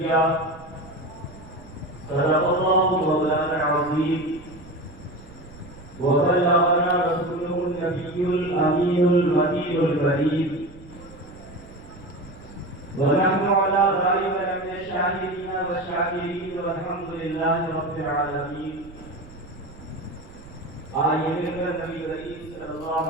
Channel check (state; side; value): noise; right; rumble, 19 dB below the sound